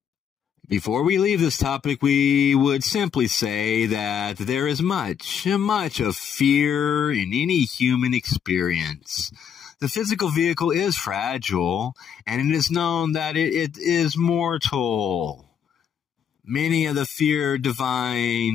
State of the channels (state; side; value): quieter; right; 8.0 dB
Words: Before we leave this topic, we would simply say that there is much of fear in any human experience. The physical vehicle is fragile, and it is known that it is mortal. Many of the